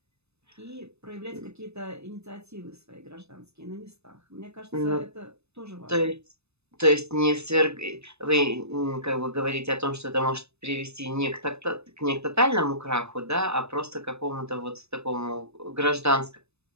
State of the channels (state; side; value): late; left; 0.80 ms